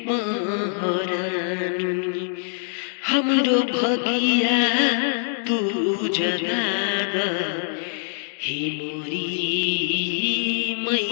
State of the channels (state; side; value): silent; right; digital silence